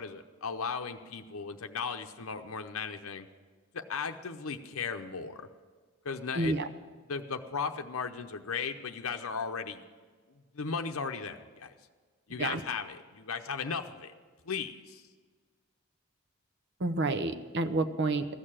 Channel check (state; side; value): normal; both; correlation 0.21